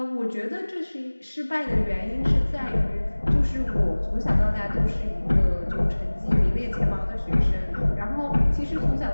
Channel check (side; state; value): both; inverted; correlation -1.00